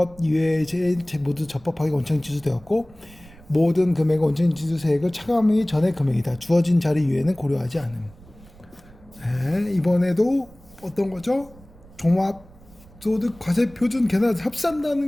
이외의 모두 적법하게 원천지수되었고 모든 금액의 원천지수세액을 차감하기 전의 금액이다. 주어진 자료 이외에는 고려하지 않음. 네, 이번에도 어떤 거죠? 종합소득 과세표준 계산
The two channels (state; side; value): noise; right; rumble, 23 dB below the sound